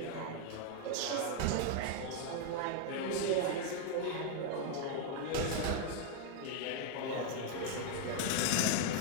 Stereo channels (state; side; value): different; both; correlation 0.00